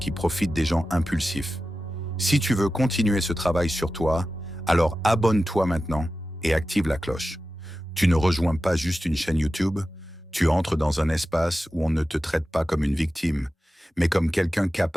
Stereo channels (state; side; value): normal; both; correlation 0.94